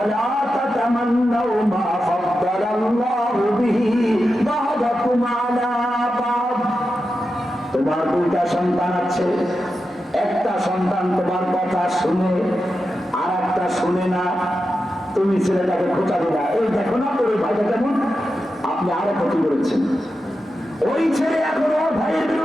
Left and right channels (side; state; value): both; normal; correlation 0.90